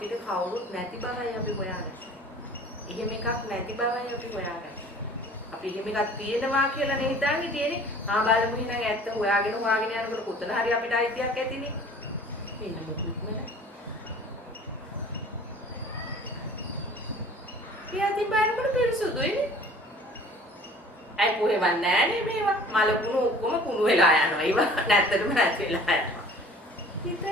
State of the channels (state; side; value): normal; both; correlation 0.48